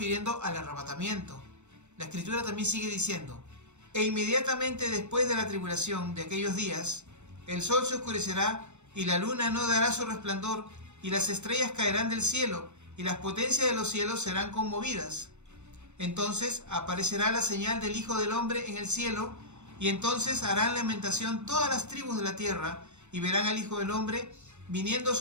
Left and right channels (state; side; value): late; left; 0.83 ms